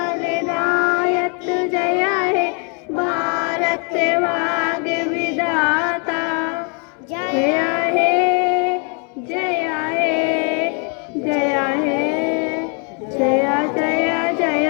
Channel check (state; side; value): quieter; right; 38.0 dB